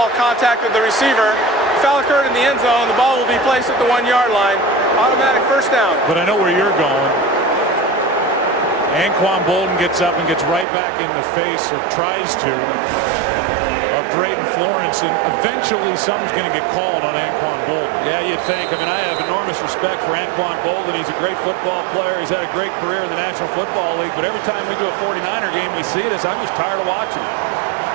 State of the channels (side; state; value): left; drops out; at 10.7 s